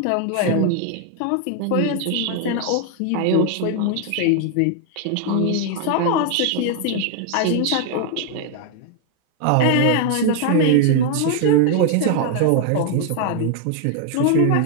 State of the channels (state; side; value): different; both; correlation 0.00